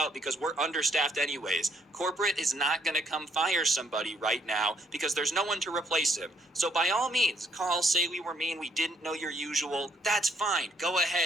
because we're understaffed anyways. Corporate is not going to come fire somebody right now because there's no one to replace him. So by all means, call, say we were mean, we didn't know your usual. That's fine. Go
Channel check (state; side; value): normal; both; correlation 0.69